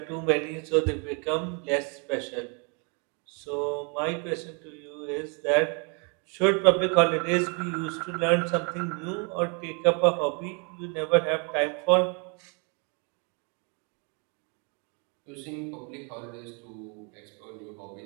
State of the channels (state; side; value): quieter; left; 35.6 dB